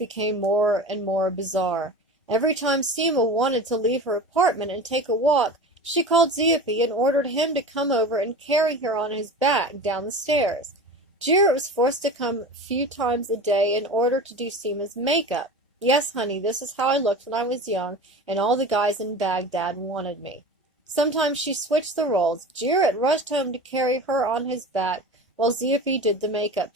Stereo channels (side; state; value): both; normal; correlation 0.33